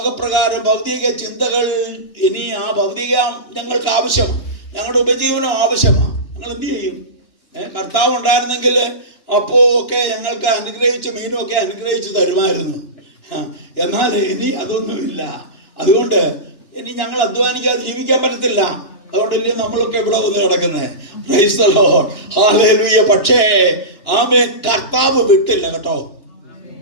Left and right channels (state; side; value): late; right; 2.9 ms